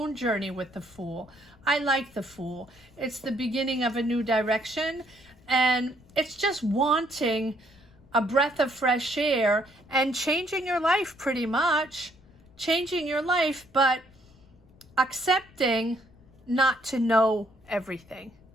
journey with the Fool. I like the Fool. It's the beginning of a new direction, and it's just wanting a breath of fresh air and changing your life, pretty much. Changing your life, but accepting not to know everything,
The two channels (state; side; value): noise; left; rumble, 27 dB below the sound